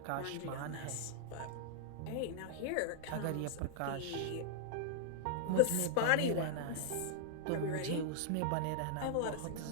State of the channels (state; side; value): different; both; correlation -0.01